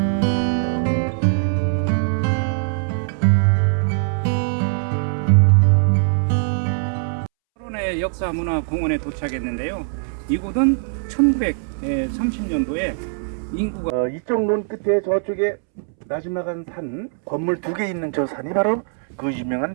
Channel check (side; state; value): left; silent; 65 dB below the other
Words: 역사문화공원에 도착했는데요. 이곳은 1930년도에 인구가 이쪽 논 끝에 저쪽에 나지막한 산 건물 2개 있는 저 산이 바로 그